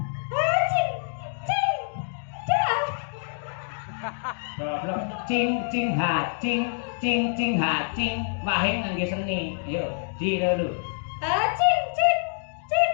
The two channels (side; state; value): right; silent; digital silence